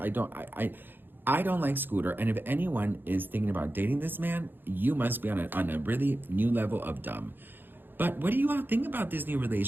like Scooter, and if anyone is thinking about dating this man, you must be on a really new level of dumb. But what do you all think about this new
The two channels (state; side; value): late; left; 0.096 ms